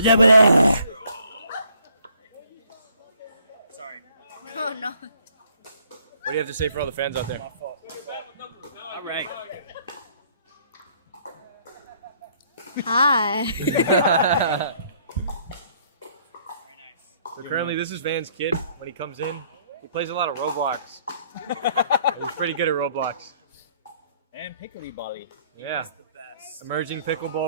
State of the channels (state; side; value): inverted; both; correlation -0.63